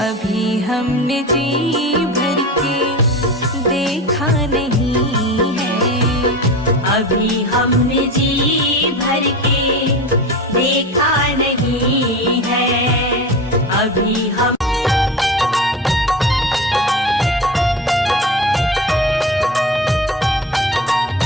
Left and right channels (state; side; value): normal; both; correlation 0.29